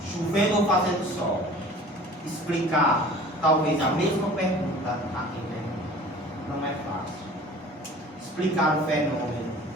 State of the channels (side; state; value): both; normal; correlation 0.45